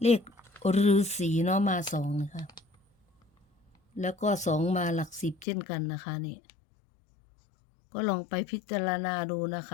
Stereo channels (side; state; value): right; drops out; at 5.5 s